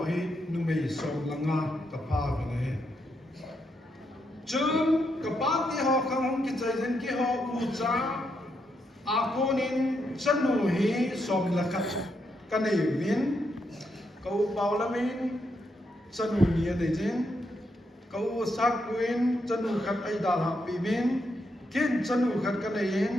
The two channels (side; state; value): both; normal; correlation 0.80